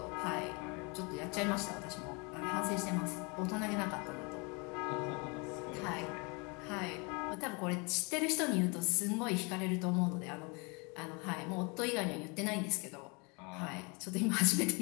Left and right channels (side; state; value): right; quieter; 30.7 dB